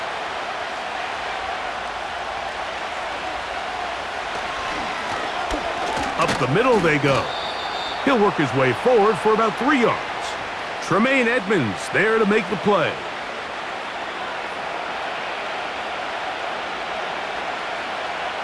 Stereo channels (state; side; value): identical; both; correlation 1.00